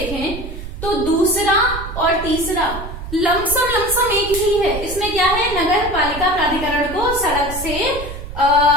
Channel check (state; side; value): noise; right; rumble, 9 dB below the sound